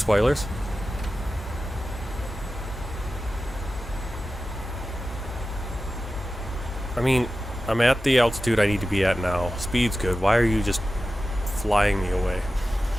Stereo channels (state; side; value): normal; both; correlation 0.94